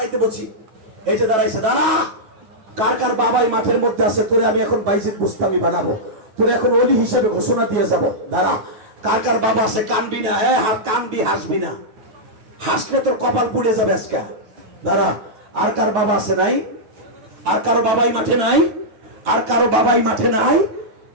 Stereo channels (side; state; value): left; late; 9.2 ms